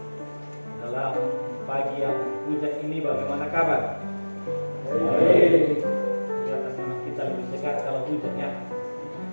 Dalam pagi yang hujan ini bagaimana kabar? Baik. Kelihatan memang kita lebih segar kalau hujannya.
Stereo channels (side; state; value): both; inverted; correlation -1.00